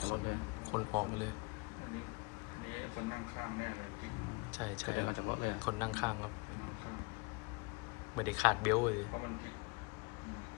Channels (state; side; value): quieter; right; 29.3 dB